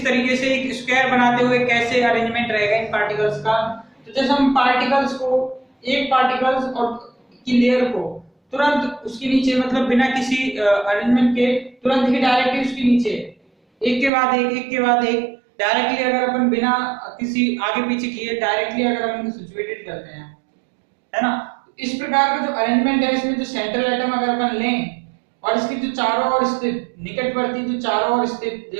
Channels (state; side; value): drops out; left; at 14.1 s